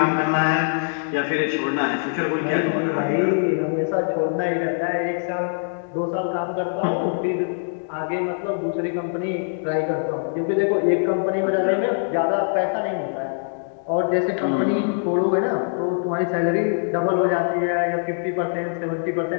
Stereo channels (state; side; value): silent; right; digital silence